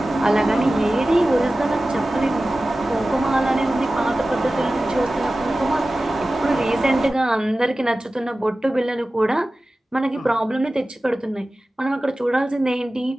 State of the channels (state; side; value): normal; both; correlation 0.96